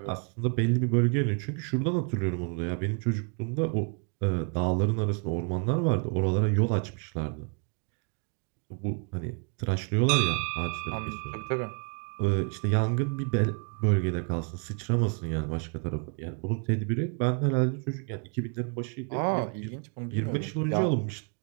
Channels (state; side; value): quieter; left; 36.4 dB